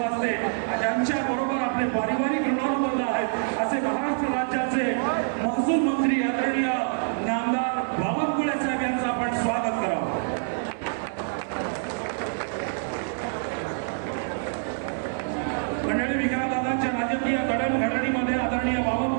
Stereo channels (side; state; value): left; silent; 56 dB below the other